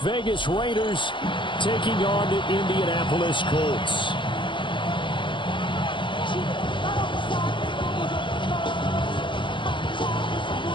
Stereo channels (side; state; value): right; late; 0.24 ms